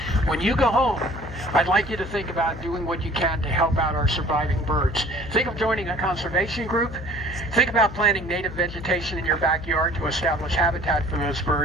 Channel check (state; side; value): noise; left; hum, 12 dB below the sound